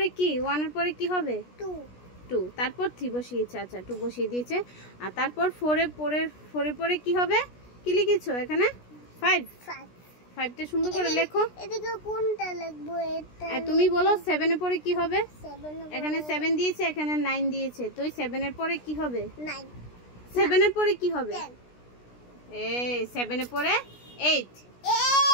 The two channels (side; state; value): right; late; 16 ms